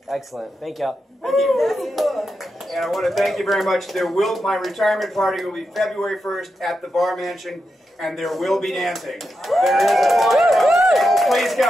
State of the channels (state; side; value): normal; both; correlation 0.87